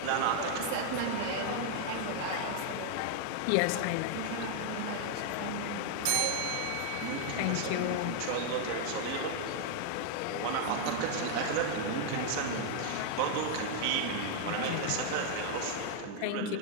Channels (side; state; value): both; different; correlation 0.00